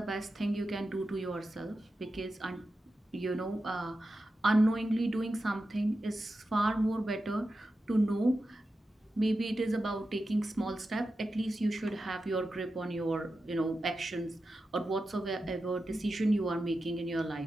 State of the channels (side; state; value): both; normal; correlation 0.91